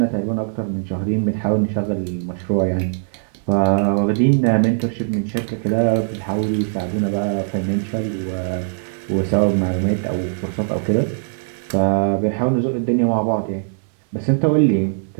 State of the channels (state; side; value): silent; left; digital silence